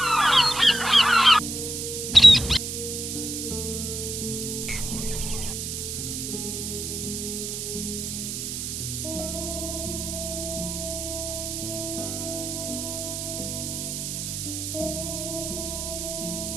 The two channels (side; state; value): right; noise; hiss, 4 dB below the sound